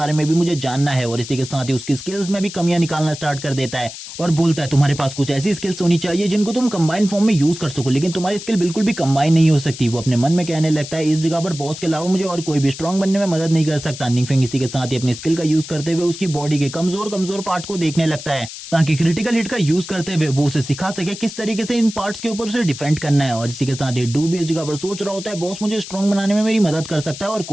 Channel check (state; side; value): noise; left; hiss, 12 dB below the sound